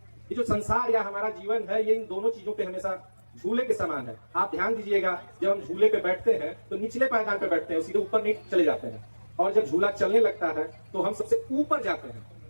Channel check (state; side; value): inverted; both; correlation -1.00